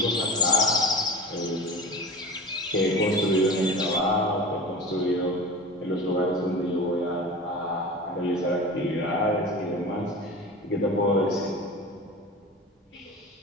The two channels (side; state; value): both; normal; correlation 0.30